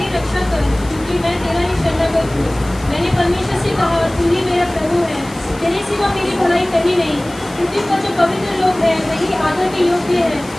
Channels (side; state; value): left; noise; hiss, 20 dB below the sound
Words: रक्षा कर क्योंकि मैं तेरा ही शरणागत हूँ। मैंने परमेश्वर से कहा तू ही मेरा प्रभु है, तेरे सिवा मेरी भलाई कहीं नहीं। पृथ्वी पर जो पवित्र लोग हैं वही आदर के योग्य है